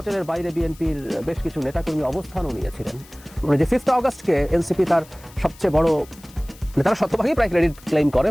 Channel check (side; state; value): left; noise; hiss, 23 dB below the sound